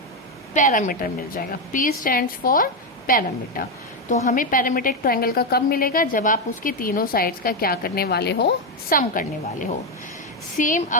पैरामीटर मिल जाएगा। P stands for parameter. तो हमें पैरामीटर एक ट्रायंगल का कब मिलेगा, जब आप उसके तीनों साइड्स का क्या करने वाले हो, सम करने वाले हो। सेम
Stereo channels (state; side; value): normal; both; correlation 0.07